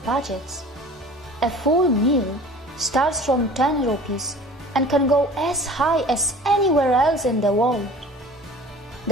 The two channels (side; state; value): both; normal; correlation 0.44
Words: budgets. A full meal starts from 10 rupees and can go as high as anywhere else in the world.